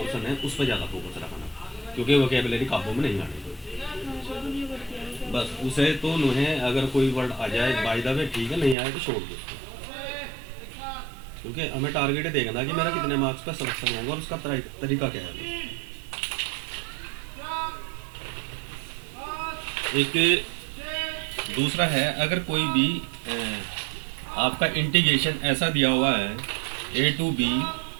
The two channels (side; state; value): left; drops out; at 8.8 s